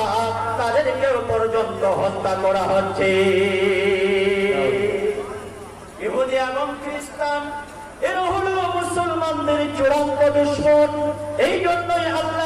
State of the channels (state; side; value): identical; both; correlation 1.00